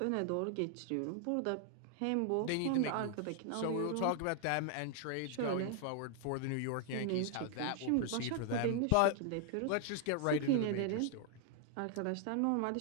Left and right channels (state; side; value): different; both; correlation 0.00